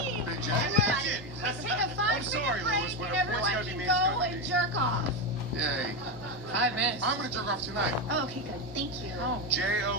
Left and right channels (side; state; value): both; normal; correlation 0.12